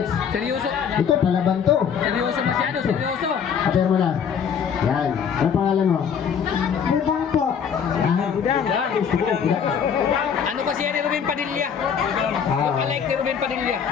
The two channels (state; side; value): quieter; right; 7.3 dB